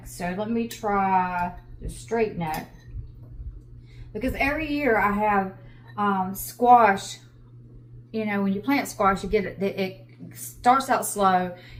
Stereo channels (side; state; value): both; identical; correlation 1.00